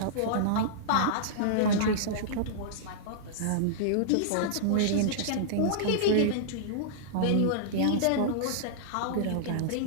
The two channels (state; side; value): different; both; correlation -0.02